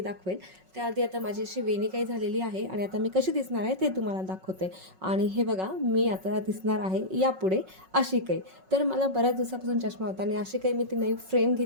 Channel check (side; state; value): left; late; 5.4 ms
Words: त्याआधी आता माझी अशी वेणी काही झालेली आहे आणि आता मी कशी दिसणार आहे ते तुम्हाला दाखवते. आणि हे बघा, मी आता दिसणार आहे यापुढे अशी काही. तर मला बऱ्याच दिवसापासून चष्मा होता आणि अशी काही मी ती नवी फ्रेम